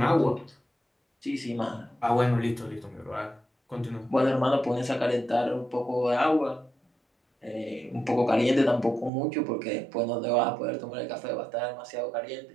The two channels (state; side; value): drops out; left; at 9.1 s